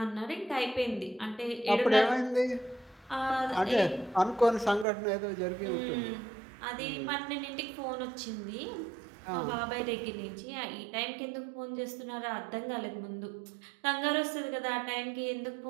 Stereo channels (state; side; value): drops out; left; at 4.9 s